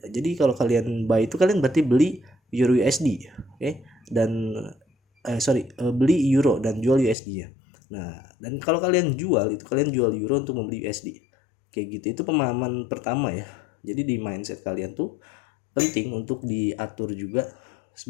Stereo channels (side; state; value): right; drops out; at 7.2 s